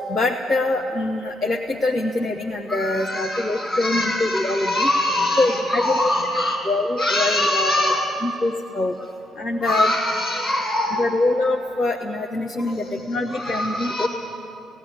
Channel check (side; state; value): both; normal; correlation 0.79